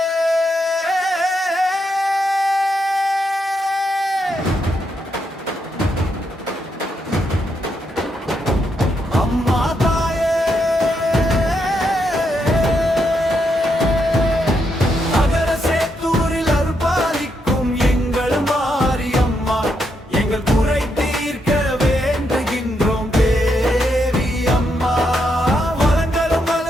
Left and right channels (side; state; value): both; normal; correlation 0.80